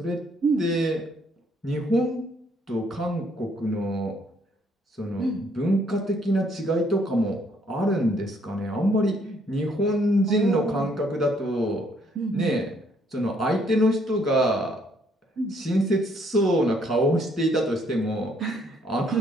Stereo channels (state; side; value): normal; both; correlation 0.67